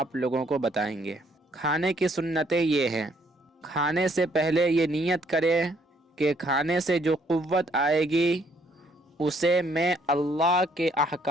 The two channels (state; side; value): normal; both; correlation 0.67